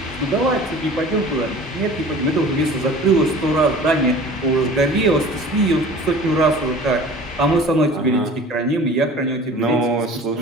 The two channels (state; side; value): normal; both; correlation 0.43